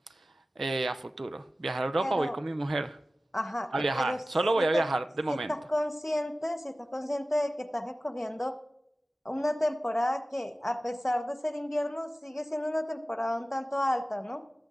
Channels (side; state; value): both; normal; correlation 0.96